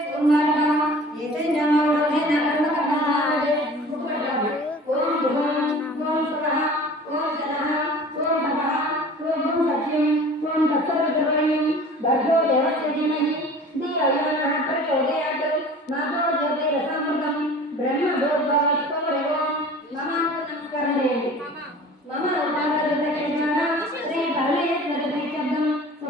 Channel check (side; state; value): both; normal; correlation 0.43